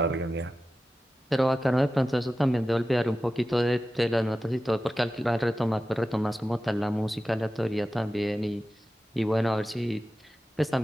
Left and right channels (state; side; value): normal; both; correlation 0.94